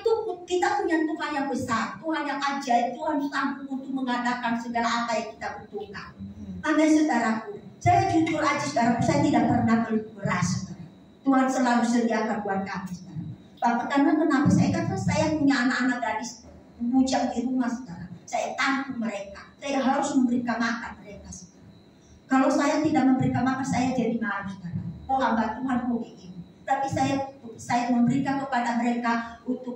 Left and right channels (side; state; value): both; identical; correlation 1.00